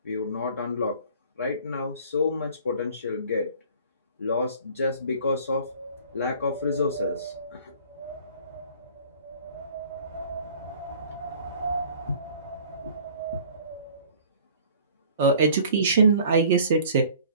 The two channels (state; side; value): inverted; both; correlation -0.50